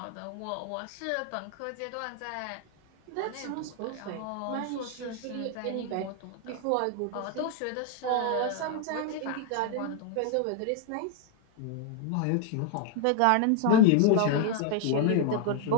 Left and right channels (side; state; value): both; different; correlation 0.00